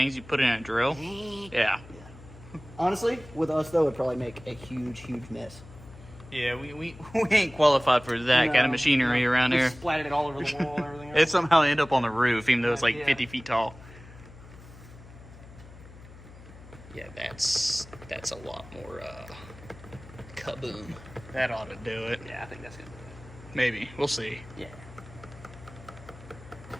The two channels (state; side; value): noise; left; hum, 18 dB below the sound